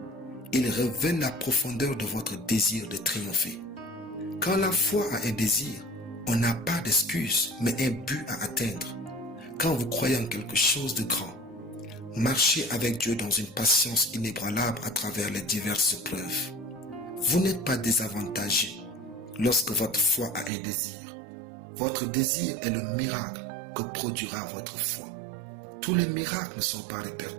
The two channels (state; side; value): drops out; left; at 20.5 s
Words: Ils révèlent la profondeur de votre désir de triompher. Quand la foi a un désir, on n'a pas d'excuse, mais un but à atteindre. Quand vous croyez en quelque chose de grand, marchez avec Dieu dans une patience inébranlable à travers les diverses preuves. Vous n'êtes pas désavantagé lorsque votre foi a un désir. Votre désir est le miracle que produira votre foi. Tous les miracles ne sont pas